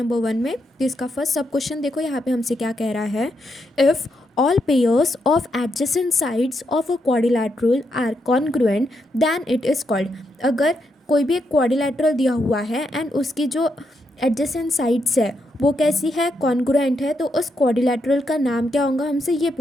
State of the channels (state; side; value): normal; both; correlation 0.81